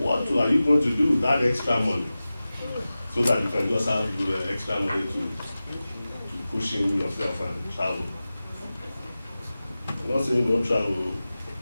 are you going to do with that extra money? So that you can just have extra money to cushion yourself and travel. I'm not saying don't travel,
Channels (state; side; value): inverted; both; correlation -0.96